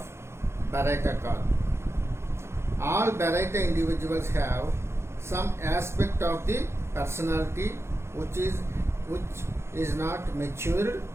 Baraita call. All Baraita individuals have some aspect of the personality which is not matured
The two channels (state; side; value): late; left; 0.13 ms